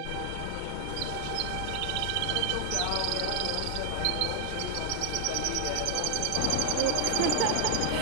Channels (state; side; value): different; both; correlation 0.00